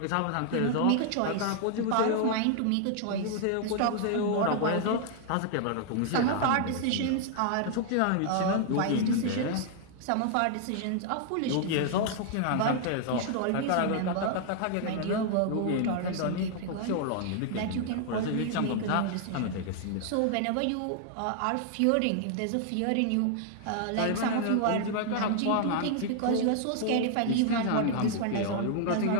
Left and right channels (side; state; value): both; different; correlation -0.01